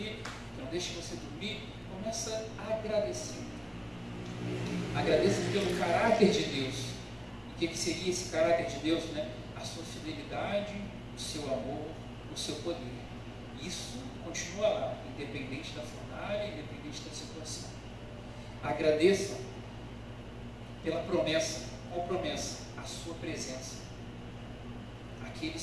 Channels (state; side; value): identical; both; correlation 1.00